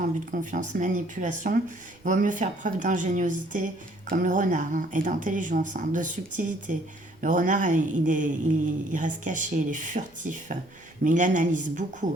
abus de confiance, manipulation, il vaut mieux faire preuve d'ingéniosité, comme le renard, hein, et d'intelligence, hein, de subtilité. Le renard, il reste caché, il est furtif, mais il analyse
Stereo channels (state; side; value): noise; right; rumble, 29 dB below the sound